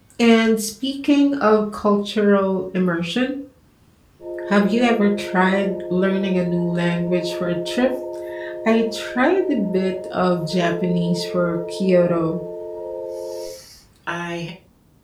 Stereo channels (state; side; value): identical; both; correlation 1.00